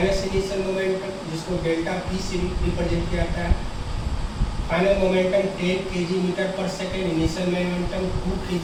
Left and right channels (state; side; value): identical; both; correlation 1.00